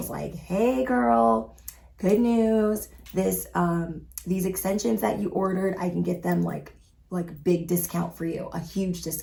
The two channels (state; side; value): identical; both; correlation 1.00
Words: like, hey girl, good news. These extensions that you ordered, I can get them like big discount for you, a huge